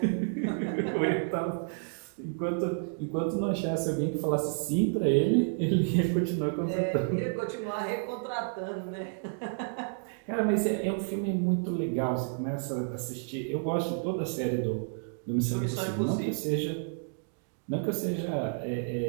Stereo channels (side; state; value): left; silent; digital silence